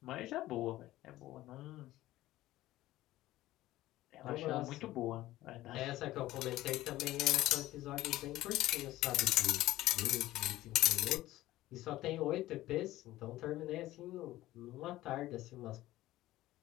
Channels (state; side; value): quieter; right; 16.0 dB